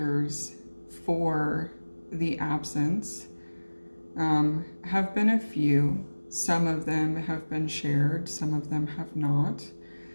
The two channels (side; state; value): both; inverted; correlation -1.00